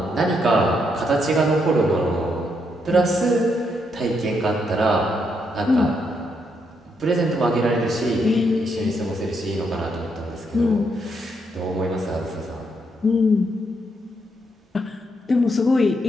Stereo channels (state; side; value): normal; both; correlation 0.78